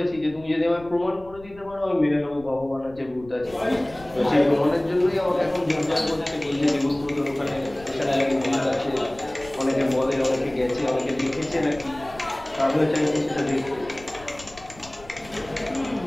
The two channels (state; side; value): noise; left; rumble, 21 dB below the sound